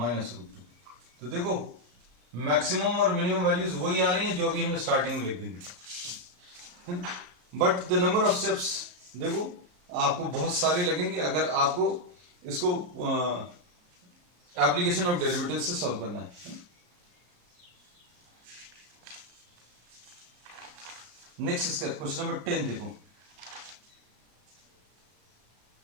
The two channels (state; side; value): late; left; 34 ms